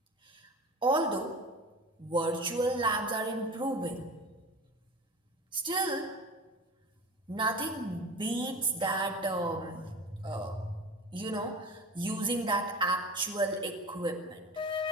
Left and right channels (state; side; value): normal; both; correlation 0.34